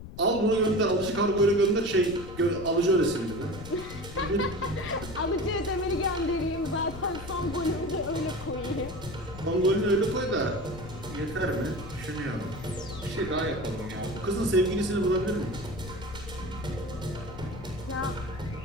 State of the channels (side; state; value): left; noise; rumble, 13 dB below the sound